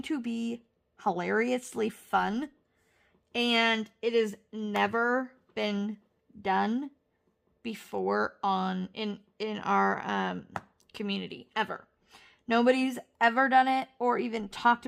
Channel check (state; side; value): identical; both; correlation 1.00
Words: to be hilariously fun. And it has never been done before in our community, ever. Nobody's ever done it or even talked